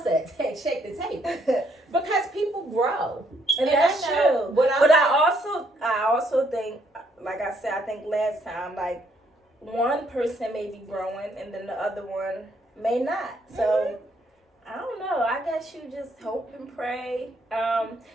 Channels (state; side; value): normal; both; correlation 0.70